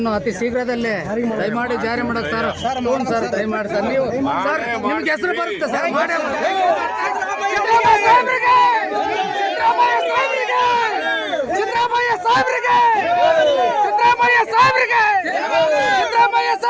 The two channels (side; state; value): both; identical; correlation 1.00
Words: ಅತಿ ಶೀಘ್ರದಲ್ಲೇ ದಯಮಾಡಿ ಜಾರಿ ಮಾಡೋದು ಸರ್. ಸರ್ ದಯಮಾಡಿ ಸರ್, ನೀವು ಸರ್ ನಿಮ್ಗೆ ಹೆಸರು ಬರುತ್ತೆ ಸರ್. ಸಿದ್ದರಾಮಯ್ಯ ಸಾಹೇಬ್ರಿಗೆ